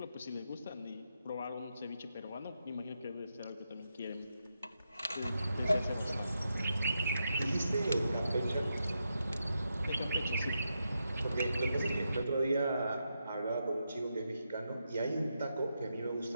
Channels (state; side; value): inverted; both; correlation -0.85